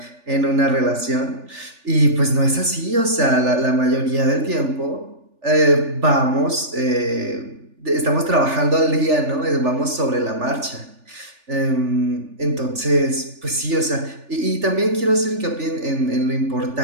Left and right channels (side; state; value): left; late; 3.4 ms